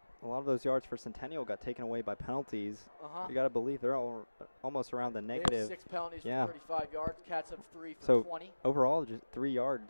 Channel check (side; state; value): both; inverted; correlation -1.00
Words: those yards for Centennial got taken away by penalties. You got to believe they're all almost around the negative. They have 6 penalties for 35 yards. Cats have 3 for so 20. Overall, just 3